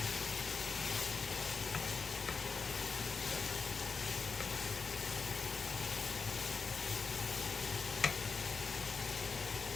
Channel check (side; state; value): right; quieter; 4.9 dB